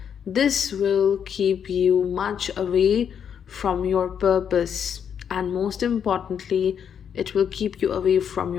This will keep you much away from your purpose, and most importantly, it will keep you away from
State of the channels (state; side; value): quieter; right; 8.0 dB